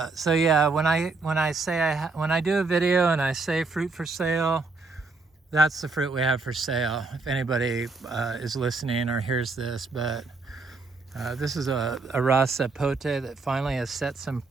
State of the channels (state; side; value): quieter; left; 3.8 dB